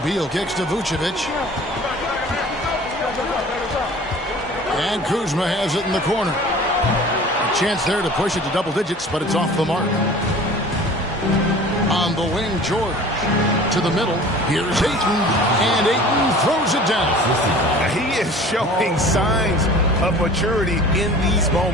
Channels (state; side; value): normal; both; correlation 0.44